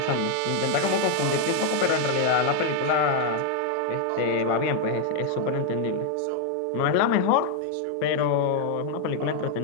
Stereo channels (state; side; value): different; both; correlation 0.00